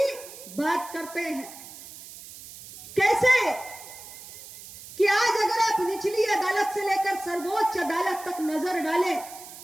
बात करते हैं। कैसे कि आज अगर आप निचली अदालत से लेकर सर्वोच्च अदालत तक नजर डालें,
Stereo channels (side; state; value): right; noise; hiss, 15 dB below the sound